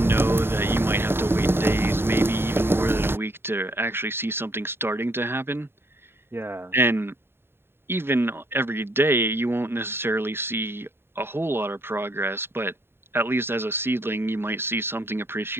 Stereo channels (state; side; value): late; left; 0.11 ms